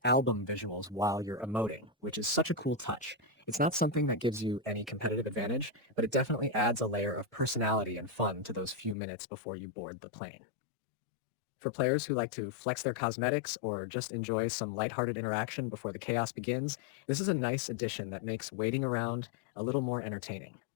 album visuals while you're emoting, which is such a cool touch. It's not something that gives you any competitive advantage, but it definitely adds a layer of personality and fun to those few minutes before you board the plane. For players who like to flex their cosmetics or just enjoy some lighthearted interaction before the chaos begins, this is a nice addition that makes waiting around a little more entertaining.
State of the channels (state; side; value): drops out; right; at 9.0 s